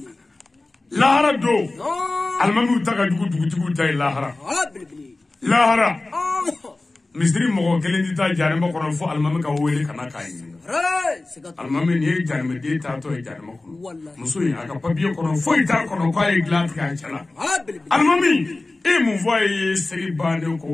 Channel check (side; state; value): right; quieter; 3.1 dB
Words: lahara don alimamiw ta ka jugu dugutigiw ta ye lahara lahara misiri mɔgɔ kelen tɛ taa janɛma kɔnɔ fo alimami ka wele ka na k'a ɲininka alimami nin ye janɛmɛden taatɔ ye janɛma kɔnɔ muso in a ka papiye kɔnɔ foyi t'a kɔnɔ k'a ye dilan tigɛ a cɛ la alimami e mun fɔ a ye seli bannen k'o